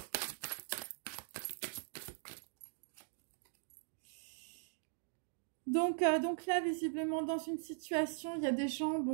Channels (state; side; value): silent; left; digital silence